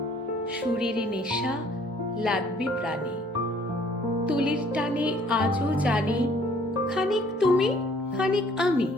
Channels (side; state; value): both; normal; correlation 0.59